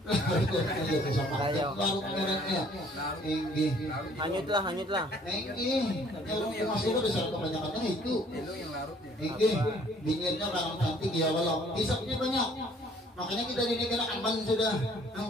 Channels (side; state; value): both; normal; correlation 0.58